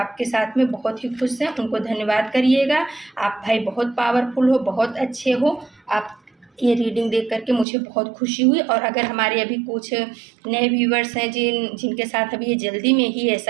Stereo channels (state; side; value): drops out; left; at 7.7 s